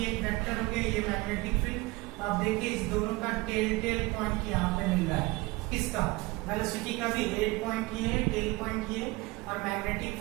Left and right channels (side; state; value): left; quieter; 22.3 dB